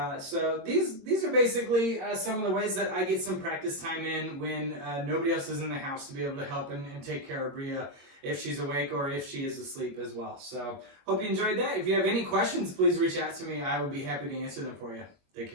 So these are basically some of the ways that I get some practice time in when nobody else is in the house to be able to help and take care of Bria if she's awake or if she is asleep as well. So hope you enjoyed that. If you have any questions, please reach out to me. I would be happy to answer them for you. Take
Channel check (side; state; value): left; late; 21 ms